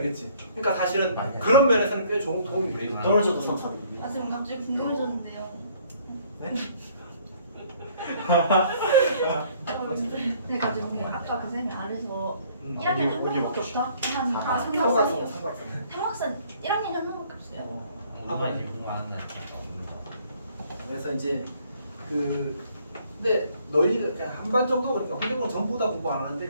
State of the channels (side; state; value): both; inverted; correlation -0.60